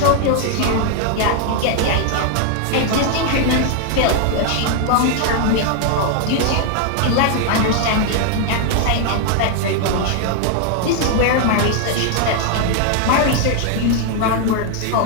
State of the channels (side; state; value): both; different; correlation 0.00